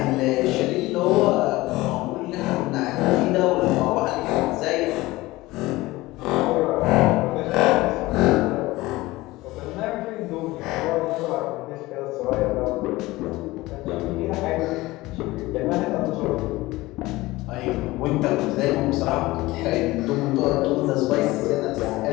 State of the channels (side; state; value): right; quieter; 19.5 dB